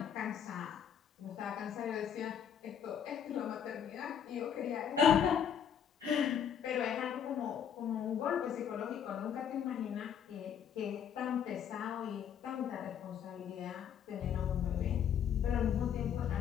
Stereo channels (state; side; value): quieter; right; 8.5 dB